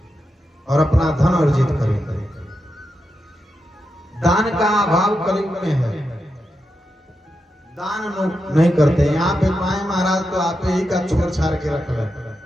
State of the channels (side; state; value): both; normal; correlation 0.87